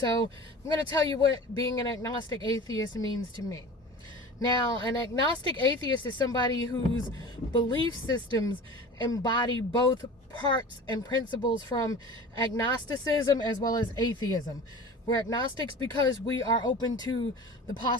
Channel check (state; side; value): normal; both; correlation 0.37